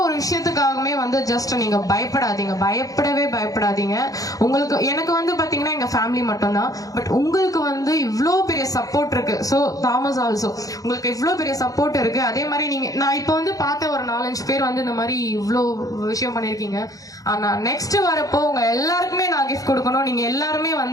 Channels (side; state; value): right; late; 0.17 ms